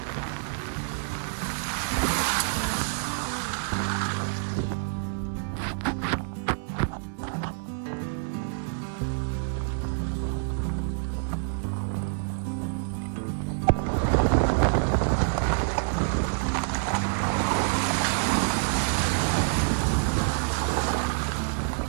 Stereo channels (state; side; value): silent; left; 60 dB below the other